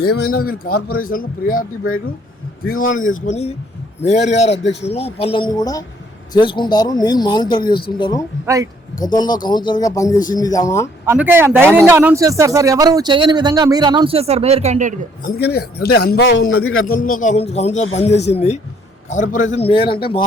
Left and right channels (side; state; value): both; normal; correlation 0.64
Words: ఏమైనా వీళ్ళు కార్పొరేషన్లో ప్రియారిటీ బయట తీర్మానం చేసుకొని మేయర్ గారి అధ్యక్షతలో పనులన్నీ కూడా చేసుకుంటారు. నేను మానిటర్ చేస్తుంటాను. రైట్. గతంలో కౌన్సిలర్ గా పనిచేసింది ఆమె. అందుకే ధైర్యంగా అనౌన్స్ చేస్తారు సార్, ఎవరు చేయని విధంగా మీరు అనౌన్స్ చేస్తారు మేయర్ క్యాండిడేట్. అందుకని అంటే అనుభవం ఉన్నది. గతంలో కౌన్సిలర్ పనిచేసింది. కార్పొరేషన్ మేయర్ అంటే